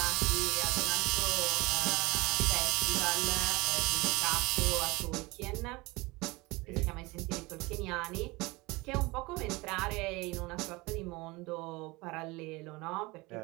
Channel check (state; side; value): quieter; left; 23.2 dB